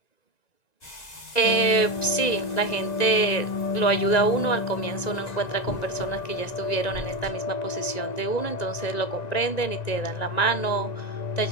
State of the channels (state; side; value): late; right; 1.9 ms